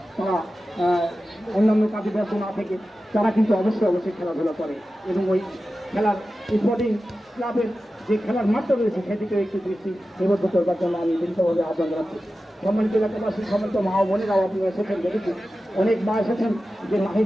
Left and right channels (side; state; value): both; normal; correlation 0.94